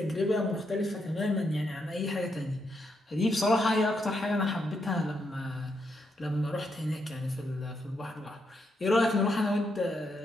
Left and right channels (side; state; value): both; normal; correlation 0.80